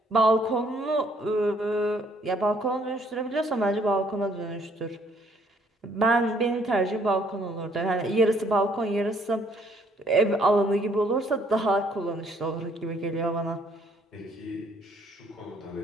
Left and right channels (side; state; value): both; normal; correlation 0.64